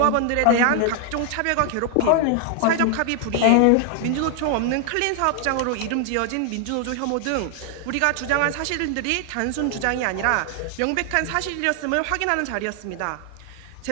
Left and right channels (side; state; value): both; different; correlation 0.00